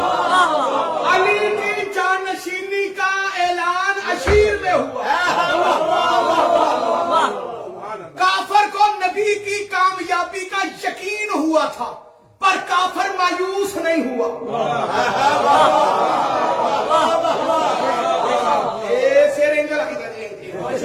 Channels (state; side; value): identical; both; correlation 1.00